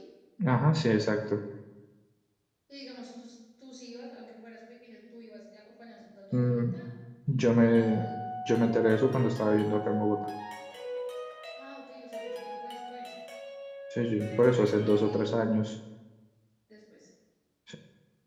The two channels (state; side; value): identical; both; correlation 1.00